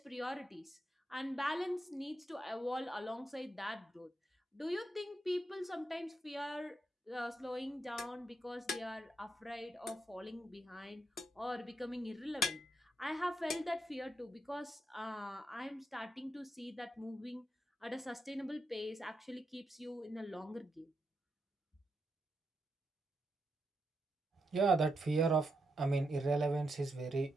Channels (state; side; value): normal; both; correlation 0.82